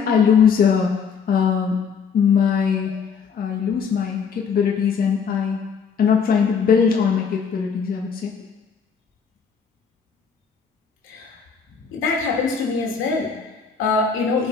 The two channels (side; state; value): right; quieter; 6.2 dB